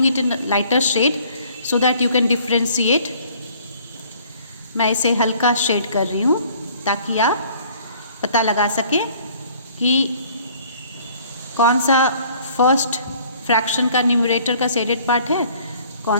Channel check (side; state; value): both; inverted; correlation -0.56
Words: it in a lighter shade so that you can differentiate. मैं इसे हल्का shade कर रही हूँ ताकि आप पता लगा सकें कि कौन सा फर्स्ट फ्रैक्शन का न्यूमरेटर का शेडेड पार्ट है,